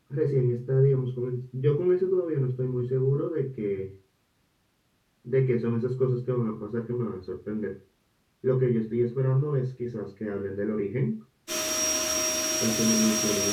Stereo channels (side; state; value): both; identical; correlation 1.00